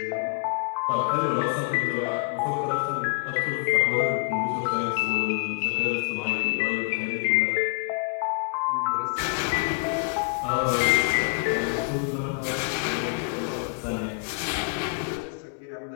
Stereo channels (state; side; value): quieter; right; 32.4 dB